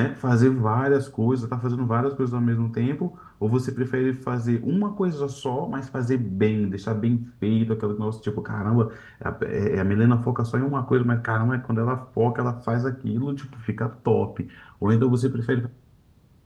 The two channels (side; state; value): both; identical; correlation 1.00